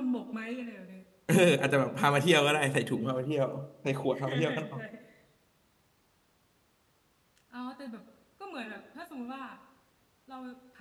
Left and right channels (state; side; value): identical; both; correlation 1.00